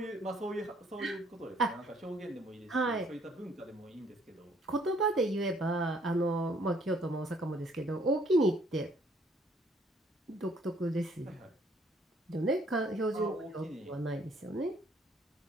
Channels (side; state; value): both; normal; correlation 0.63